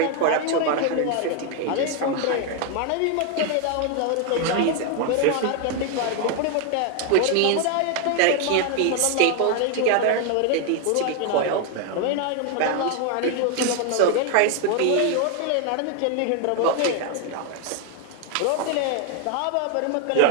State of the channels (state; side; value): different; both; correlation 0.01